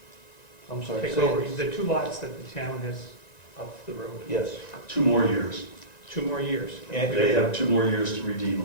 I'm sorry. take say over. it. The 2 lots that the town has up the road, Yes. 2 more years. 2 more years. And- They have 2 more years to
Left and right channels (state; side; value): late; right; 1.9 ms